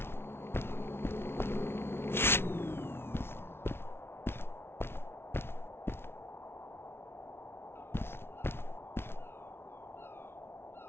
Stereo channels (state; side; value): late; right; 0.12 ms